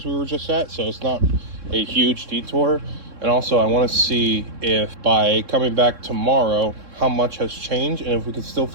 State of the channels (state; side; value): late; left; 3.6 ms